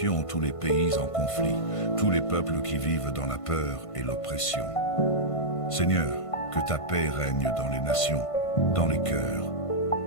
tous les pays en conflit, tous les peuples qui vivent dans la peur et l'oppression. Seigneur, que ta paix règne dans les nations, dans les cœurs,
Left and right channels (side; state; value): right; late; 1.5 ms